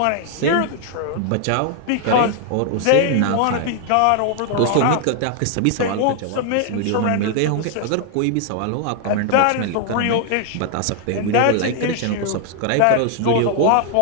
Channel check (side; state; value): both; different; correlation 0.00